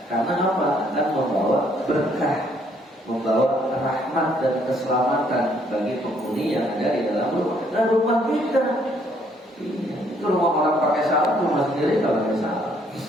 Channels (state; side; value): normal; both; correlation 0.66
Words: Karena apa? Akan membawa berkah, membawa rahmat dan keselamatan bagi penghuni yang ada di dalam rumah. Dan rumah kita, itu rumah orang pakai salam, rumah sendiri kalau pakai salam.